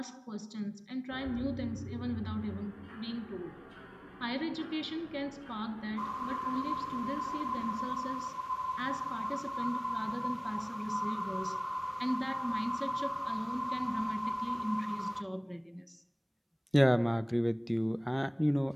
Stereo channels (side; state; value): both; identical; correlation 1.00